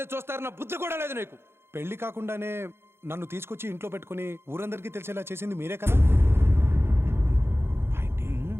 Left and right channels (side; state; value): left; late; 0.12 ms